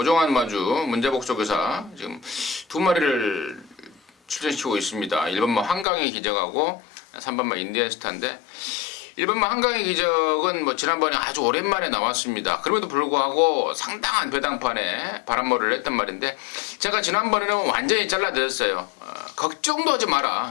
마주 문제복 조교사 지금 두 마리를 출전시키고 있습니다. 1번만 한강의 기적하고 3번만 인디언스타인데, 1번만 한강의 기적은 뭐 지난번에 아주 오랜만에 나왔습니다. 그럼에도 불구하고 상당한 배당판에 바람머리를 했단 말인데, 제가 지난번에는 완전히 잘라드렸어요. 걱정도 하지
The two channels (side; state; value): right; drops out; at 5.9 s